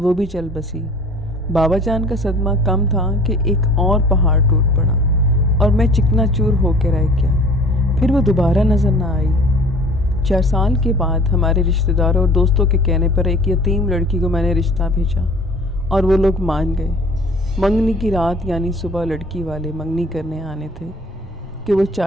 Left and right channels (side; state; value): both; normal; correlation 0.48